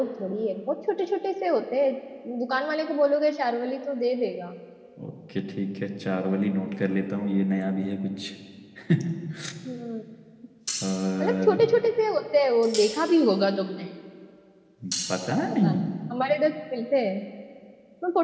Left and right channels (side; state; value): both; identical; correlation 1.00